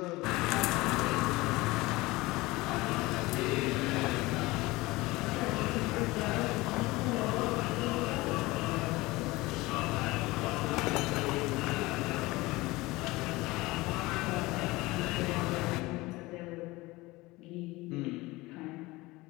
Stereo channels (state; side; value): quieter; right; 21.0 dB